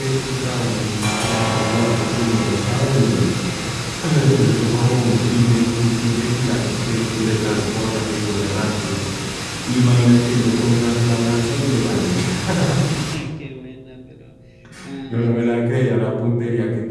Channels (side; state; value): both; identical; correlation 1.00